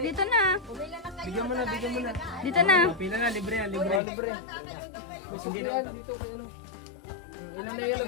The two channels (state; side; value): drops out; right; at 4.0 s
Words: na. Bigyan mo na. Dito na. Pila na, libre yan, Libre. Libre. May suklihan dito kay Ilan na yung